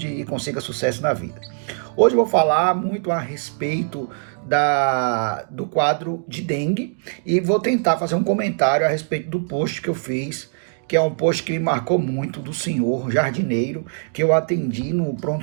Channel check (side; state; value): left; silent; digital silence